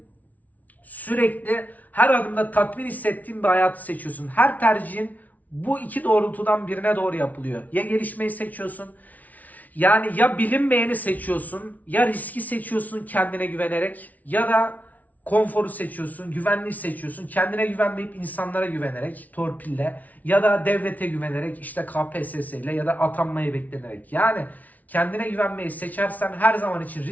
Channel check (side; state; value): right; late; 0.074 ms